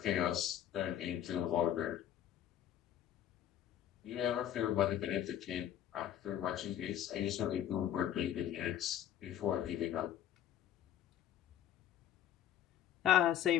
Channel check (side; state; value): right; quieter; 11.0 dB